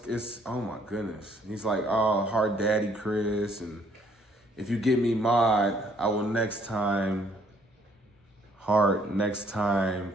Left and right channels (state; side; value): normal; both; correlation 0.64